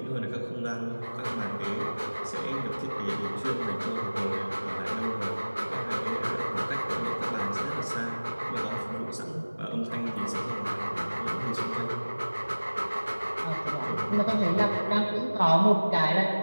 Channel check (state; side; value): inverted; both; correlation -1.00